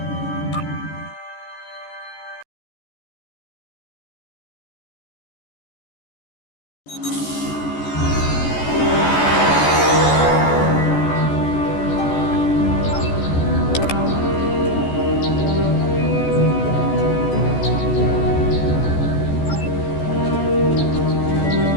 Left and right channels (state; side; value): late; right; 14 ms